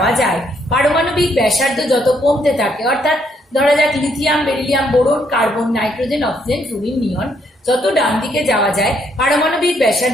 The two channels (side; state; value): both; normal; correlation 0.71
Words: যায় পারমাণবিক ব্যাসার্ধ যত কমতে থাকে, অর্থাৎ ধরা যাক lithium, beryllium, boron, carbon, nitrogen, oxygen, fluorine, neon, যত ডান দিকে যাওয়া যায় পারমাণবিক